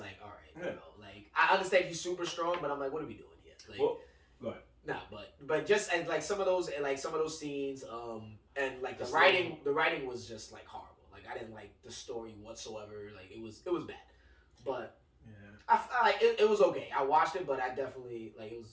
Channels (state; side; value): identical; both; correlation 1.00